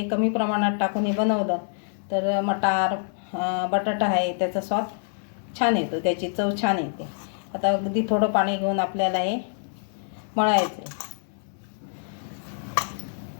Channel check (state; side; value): silent; right; 61 dB below the other